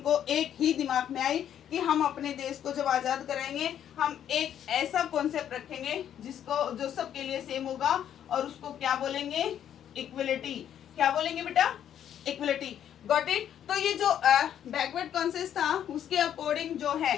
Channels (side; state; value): right; quieter; 10.0 dB